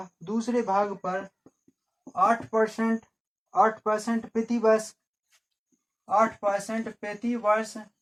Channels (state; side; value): identical; both; correlation 1.00